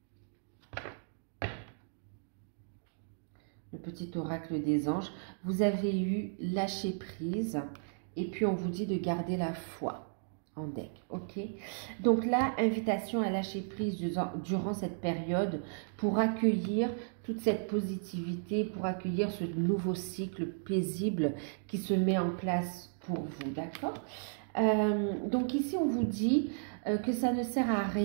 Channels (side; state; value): left; silent; digital silence